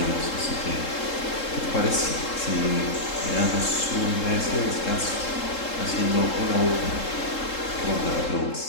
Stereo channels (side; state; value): right; late; 3.7 ms